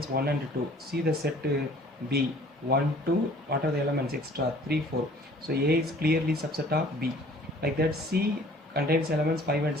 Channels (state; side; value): normal; both; correlation 0.53